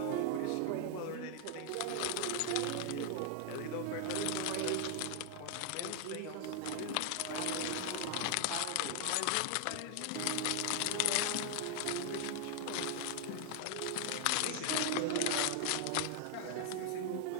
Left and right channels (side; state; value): both; different; correlation 0.00